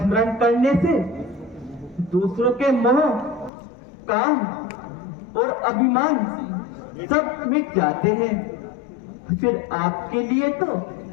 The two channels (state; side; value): drops out; right; at 3.5 s